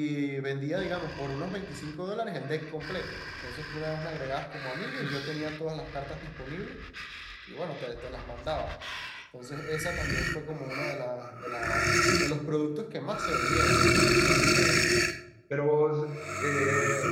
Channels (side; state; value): both; identical; correlation 1.00